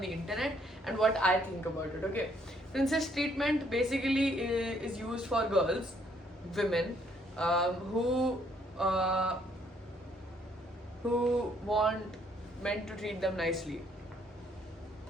internet and what I think about it, okay? Princess treatment basically is used for girls, women, uh, who want men to treat them nicely.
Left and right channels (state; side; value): normal; both; correlation 0.67